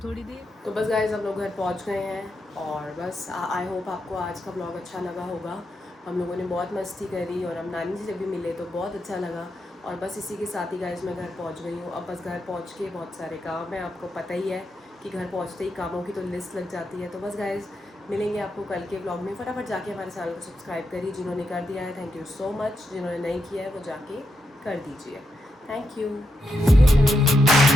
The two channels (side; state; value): both; normal; correlation 0.84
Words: देर। तो बस गाइज हम लोग घर पहुंच गए हैं और बस आई होप आपको आज का ब्लॉग अच्छा लगा होगा। हम लोगों ने बहुत मस्ती करी और हम नानी से जब भी मिले तो बहुत अच्छा लगा। और बस इसी के साथ ही गाइज मैं घर पहुंच गई हूँ। अब बस घर पहुंच के बहुत सारे काम है, आपको पता ही है कि घर पहुंचते ही कामों की तो लिस्ट लग जाती है। तो बस गाइज मिलेंगे आपको कल के ब्लॉग में। फटाफट जाके हमारे चैनल को सब्सक्राइब करिए, जिन्होंने कर दिया है थैंक यू सो मच, जिन्होंने नहीं किया है वो जाके कर दीजिए। Thank you.